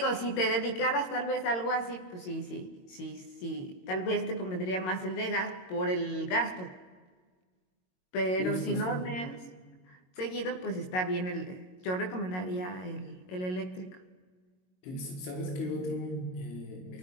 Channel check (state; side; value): late; right; 22 ms